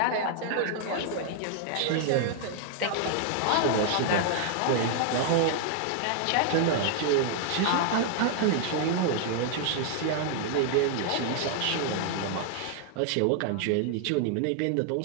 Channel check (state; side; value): different; both; correlation 0.00